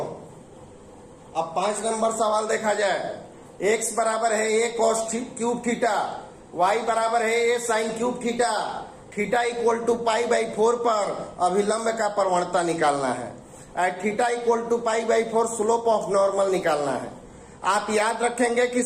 अब 5 नंबर सवाल देखा जाए। x बराबर है a cos cube theta, y बराबर है a sin cube theta, theta equal to pi by 4 पर अभिलंब का प्रवणता निकालना है, at theta equal to pi by 4 slope of normal निकालना है। आप याद रखेंगे कि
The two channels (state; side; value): identical; both; correlation 1.00